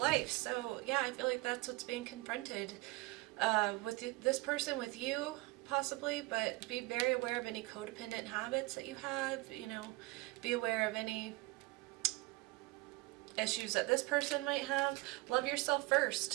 So yeah, I feel like that's what's being confronted with this person, with you possibly, but be very aware of any codependent habits that you have, you know, be aware of any issues that this person might have. Love yourself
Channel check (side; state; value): left; quieter; 22.8 dB